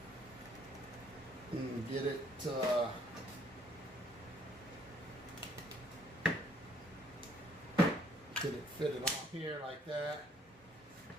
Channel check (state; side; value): normal; both; correlation 0.63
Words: and get it fitted on here like that.